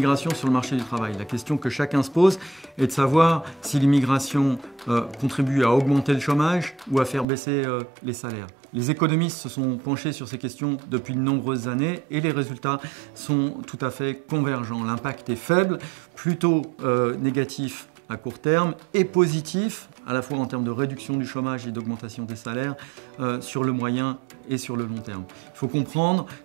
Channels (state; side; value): drops out; left; at 7.2 s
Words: sur le marché du travail. La question que chacun se pose est de savoir si l'immigration contribue à augmenter le chômage ou à faire baisser les salaires. Les économistes se sont penchés sur ces questions depuis de nombreuses années et les résultats sont tout à fait convergents. L'impact est faible, plutôt négatif à court terme et positif à la fois en termes de réduction du chômage et d'augmentation des salaires sur le moyen et sur le long terme. Il faut comprendre